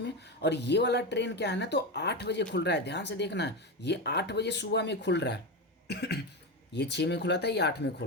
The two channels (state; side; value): normal; both; correlation 0.16